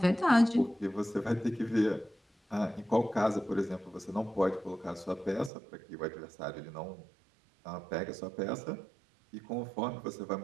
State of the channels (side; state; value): left; drops out; at 5.5 s